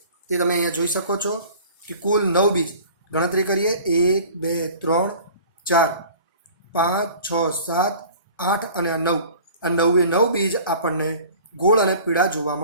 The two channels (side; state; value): both; inverted; correlation -0.46